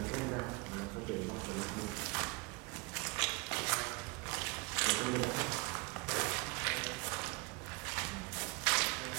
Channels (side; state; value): left; quieter; 27.1 dB